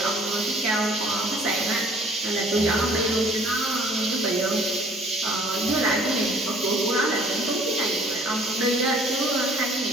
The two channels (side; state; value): both; normal; correlation 0.55